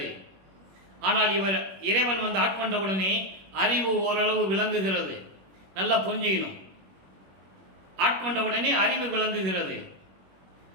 ஆனால் இறைவன் வந்து ஆட்கொண்டவுடனே அறிவு ஓரளவு விளங்குகிறது. நல்லா புரிஞ்சுக்கணும். ஆட்கொண்டவுடனே அறிவு விளங்குகிறது.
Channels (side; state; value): left; late; 21 ms